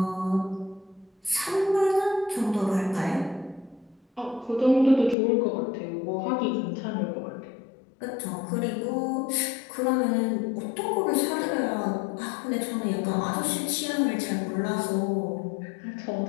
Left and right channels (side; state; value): right; drops out; at 5.2 s